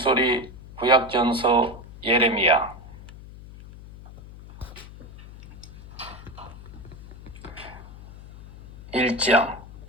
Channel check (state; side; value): noise; left; hum, 16 dB below the sound